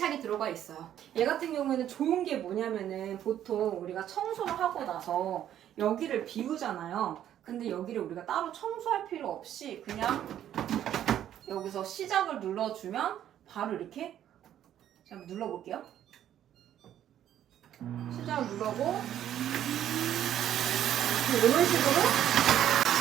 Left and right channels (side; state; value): left; quieter; 11.0 dB